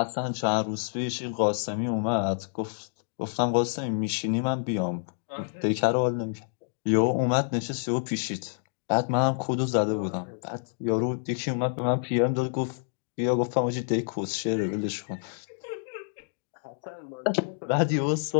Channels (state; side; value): silent; right; digital silence